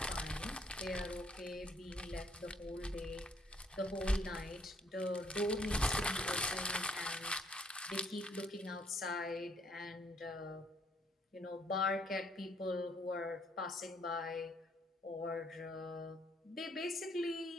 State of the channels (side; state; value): both; normal; correlation 0.67